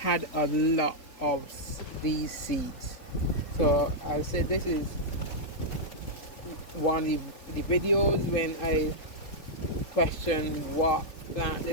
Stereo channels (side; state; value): right; late; 3.8 ms